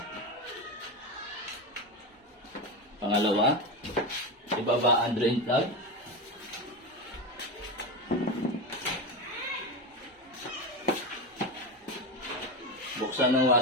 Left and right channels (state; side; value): normal; both; correlation 0.18